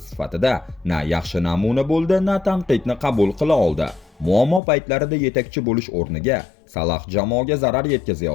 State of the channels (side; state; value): right; drops out; at 4.6 s